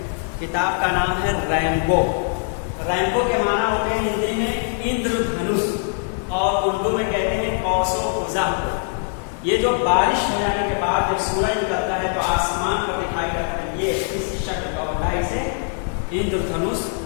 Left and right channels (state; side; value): silent; right; 60 dB below the other